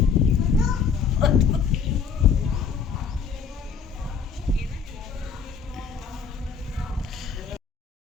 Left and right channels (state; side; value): quieter; right; 6.2 dB